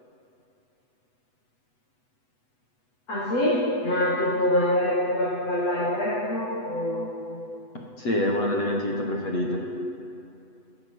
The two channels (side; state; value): right; late; 8.1 ms